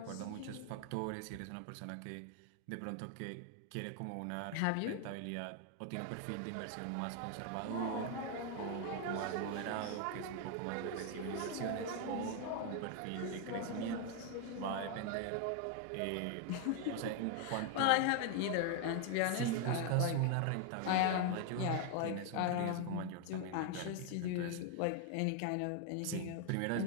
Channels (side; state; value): both; different; correlation 0.01